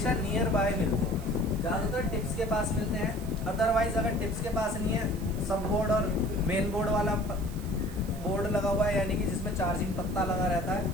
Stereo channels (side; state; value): right; noise; hiss, 19 dB below the sound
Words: नियर बाय मिलते हैं, ज़्यादातर टिप्स के पास मिलते हैं। अदरवाइज अगर टिप्स के पास नहीं है, सब बोर्ड और मेन बोर्ड वाला बोर्ड लगा हुआ है, यानी कि जिसमें चार्जिंग पत्ता लगा रहता है,